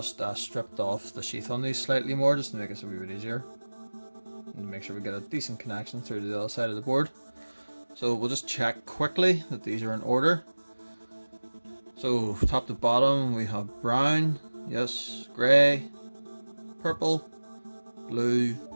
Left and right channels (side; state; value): both; inverted; correlation -1.00